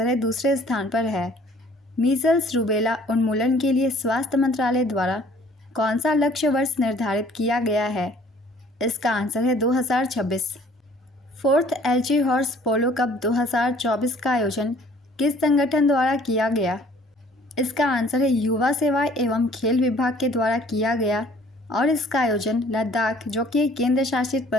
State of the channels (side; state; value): both; normal; correlation 0.56